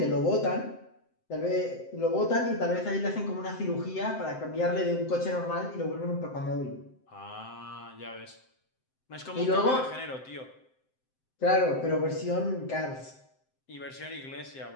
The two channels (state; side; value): late; right; 7.7 ms